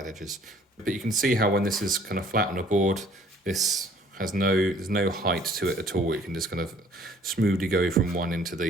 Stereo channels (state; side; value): normal; both; correlation 0.57